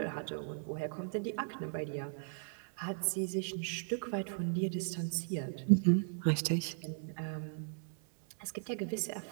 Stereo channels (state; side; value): silent; left; 53 dB below the other